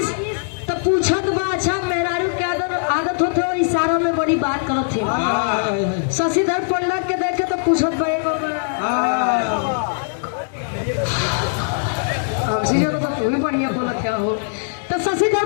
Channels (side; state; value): right; silent; digital silence